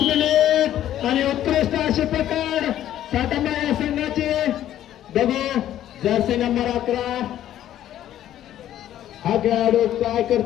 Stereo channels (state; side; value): quieter; right; 12.0 dB